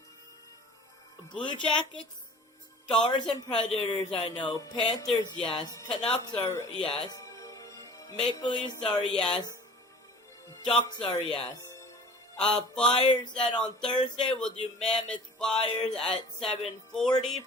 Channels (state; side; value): normal; both; correlation 0.45